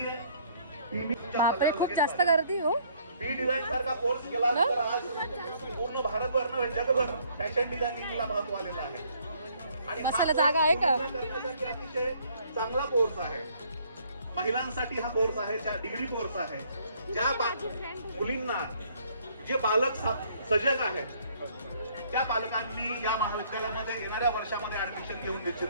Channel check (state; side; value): inverted; both; correlation -0.63